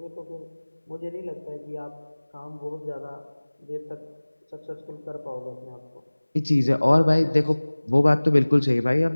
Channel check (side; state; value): both; inverted; correlation -1.00